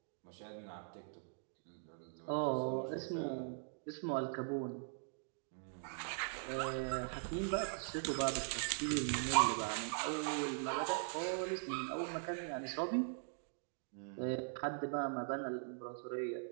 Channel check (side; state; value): left; silent; digital silence